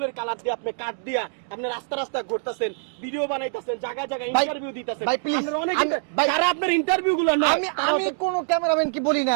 কালার দিয়ে আপনি কাট দিয়া আপনি রাস্তা রাস্তায় ঘুরতেছেন, ভিডিও বানাইতেছেন, জায়গায় জায়গায় ভাই- ইন্টারভিউ দিতেছেন। ভাই, please, আপনার অনেক ভাই- যারা আপনার ইন্টারভিউ গুলো নয় আমি তারা আমি কোন ক্যামেরাম্যান কি বলি না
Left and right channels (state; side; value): silent; left; digital silence